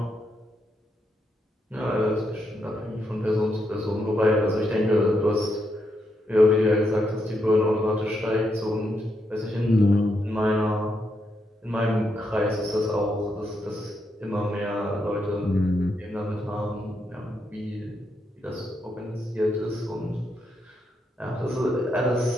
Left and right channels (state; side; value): normal; both; correlation 0.80